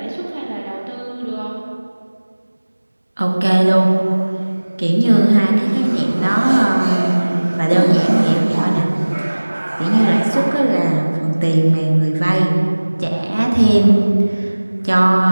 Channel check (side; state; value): both; inverted; correlation -1.00